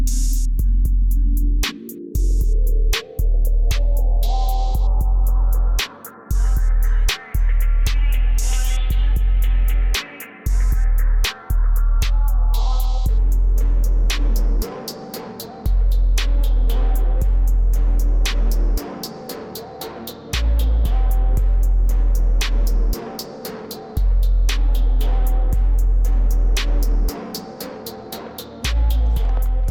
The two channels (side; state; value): both; identical; correlation 1.00